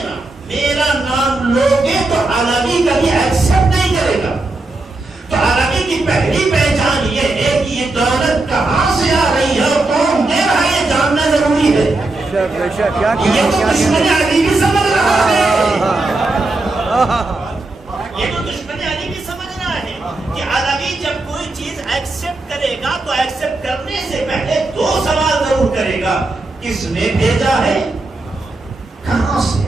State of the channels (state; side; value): quieter; left; 3.1 dB